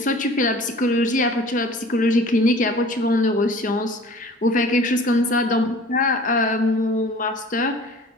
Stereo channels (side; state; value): both; normal; correlation 0.46